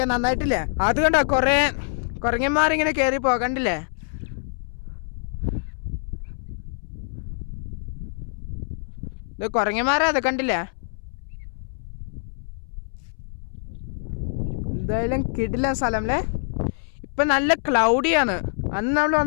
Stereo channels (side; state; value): right; silent; 62 dB below the other